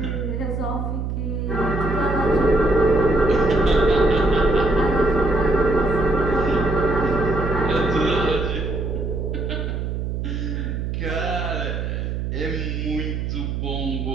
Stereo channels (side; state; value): right; noise; hum, 3 dB below the sound